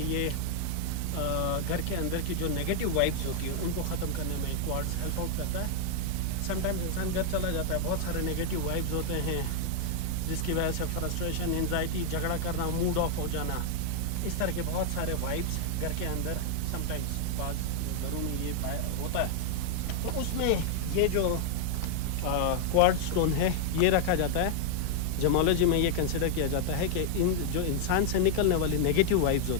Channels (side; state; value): both; different; correlation 0.00